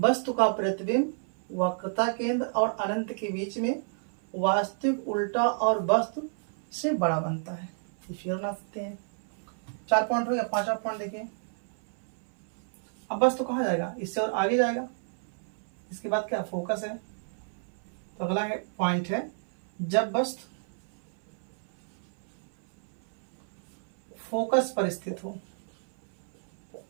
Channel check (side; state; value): left; silent; 58 dB below the other